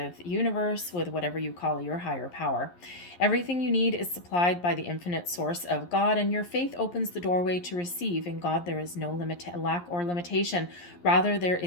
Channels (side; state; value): right; late; 11 ms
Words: universe, with whatever you call your higher power. Everything you need is supplied by the infinite source of God, and your faith opens the doorway to receive. In God, there is no lack or limitation. Rather, there